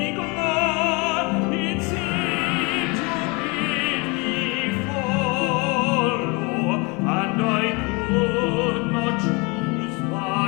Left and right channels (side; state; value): right; quieter; 28.8 dB